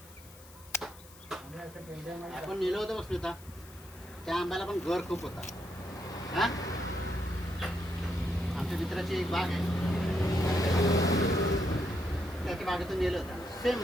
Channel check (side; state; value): left; noise; hiss, 21 dB below the sound